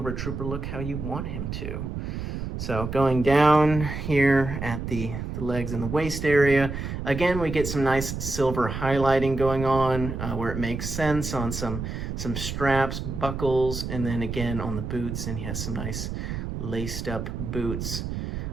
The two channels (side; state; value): right; noise; rumble, 5 dB below the sound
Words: Trooper look how you want him to. So going down here at the legs and the waist area, again, we get some nice silver highlighting going on where it makes sense on some straps, buckles, and then again on the boots, and he has some nice laced up boots.